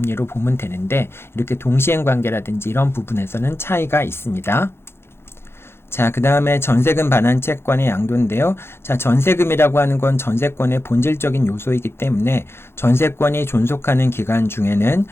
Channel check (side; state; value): right; late; 0.12 ms